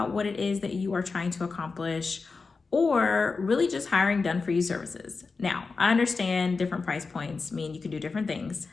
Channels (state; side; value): quieter; right; 4.4 dB